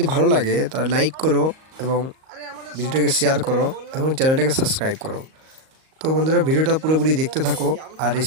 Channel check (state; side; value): late; left; 38 ms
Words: ভালো লাগে তাহলে লাইক করো এবং ভিডিওটাকে শেয়ার করো এবং চ্যানেলটাকে সাবস্ক্রাইব করো। তো বন্ধুরা, ভিডিওটা পুরোপুরি দেখতে থাকো। আর